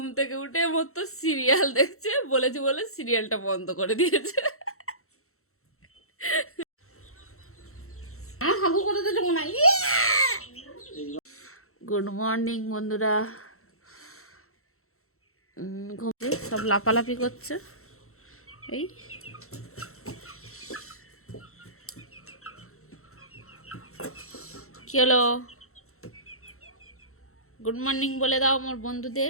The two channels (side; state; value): right; late; 0.63 ms